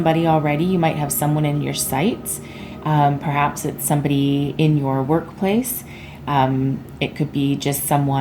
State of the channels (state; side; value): identical; both; correlation 1.00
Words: already. You might have someone in your sights. Perhaps it's somebody in your workplace. It could be just